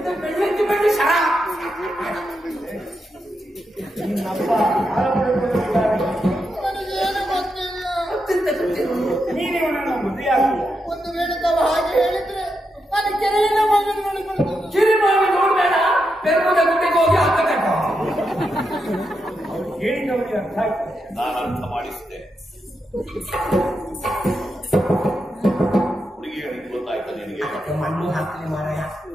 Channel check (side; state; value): both; normal; correlation 0.85